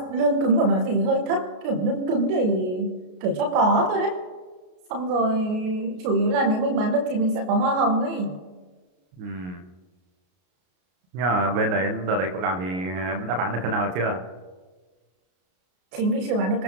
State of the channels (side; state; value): left; late; 33 ms